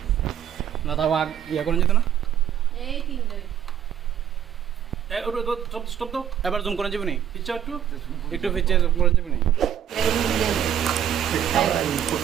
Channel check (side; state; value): left; quieter; 9.8 dB